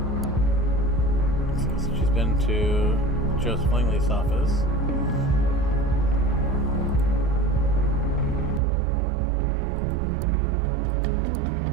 To Joseph Langley's office.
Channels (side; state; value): left; drops out; at 8.6 s